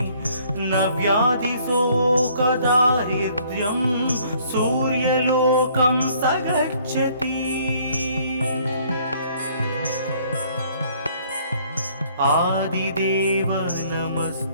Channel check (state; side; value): inverted; both; correlation -0.61